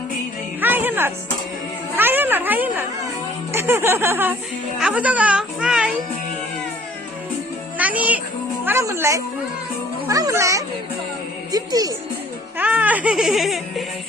hi Henot, hi Henot, hi Henot. Apa tuh kau? Hi. Nani, mana mulai? Mana mulai? Gifty. Hi.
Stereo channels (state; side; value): normal; both; correlation 0.57